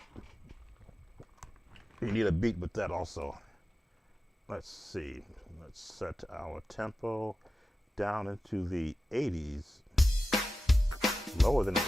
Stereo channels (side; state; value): both; normal; correlation 0.94